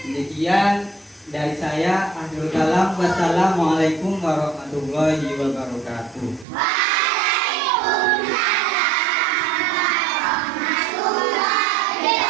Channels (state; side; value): drops out; left; at 6.5 s